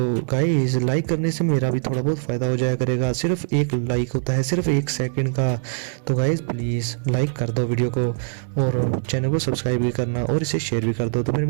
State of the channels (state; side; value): silent; left; digital silence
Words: गाइस लाइक करने से मेरा भी थोड़ा बहुत फायदा हो जाया करेगा, सिर्फ एक लाइक होता है, सिर्फ 1 सेकंड का। तो गाइस प्लीज़ लाइक कर दो वीडियो को और चैनल को सब्सक्राइब भी करना और इसे शेयर भी कर दो। तो फिर